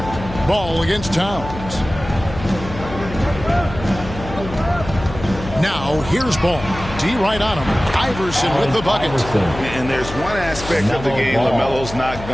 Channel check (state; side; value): noise; left; hum, 11 dB below the sound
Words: Ball against Towns. Now here's Ball. D right on him. Iverson with the bucket. And there's one aspect of the game LaMelo's not